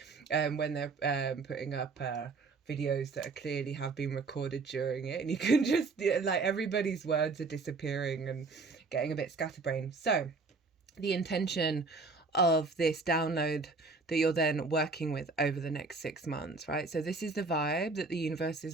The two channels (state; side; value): quieter; left; 4.0 dB